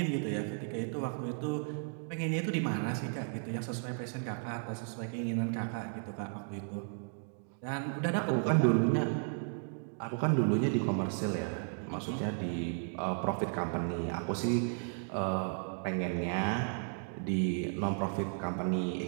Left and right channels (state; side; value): silent; left; 55 dB below the other